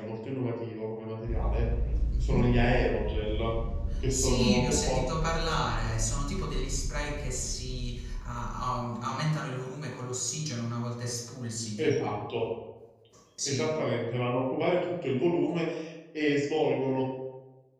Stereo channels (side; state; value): both; identical; correlation 1.00